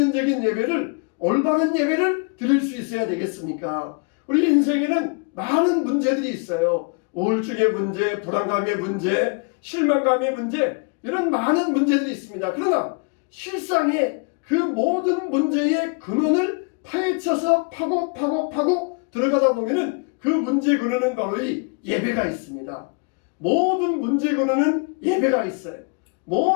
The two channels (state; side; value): quieter; right; 34.1 dB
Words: 예배를 올바른 예배를 드릴 수 있어야 되겠습니까? 우리 인생에는 많은 문제들이 있어요. 우울증의 문제, 불안감의 문제, 실망감의 문제, 이런 많은 문제들이 있습니다. 그러나 실상에 그 모든 문제의 근원을 파헤쳐서 파고 들어가다 보면은 그 문제의 근원은 바로 이 예배가 있습니다. 모든 문제의 근원은 예배가 있어요.